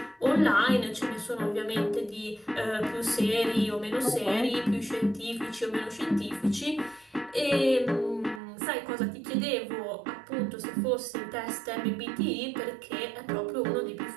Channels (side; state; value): left; drops out; at 8.4 s